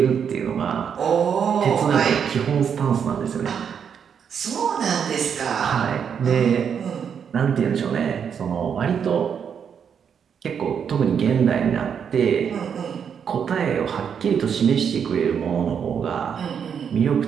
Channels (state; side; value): quieter; left; 7.4 dB